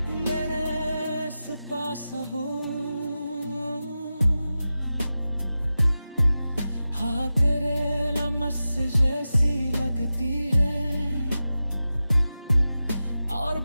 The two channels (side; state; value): both; inverted; correlation -0.94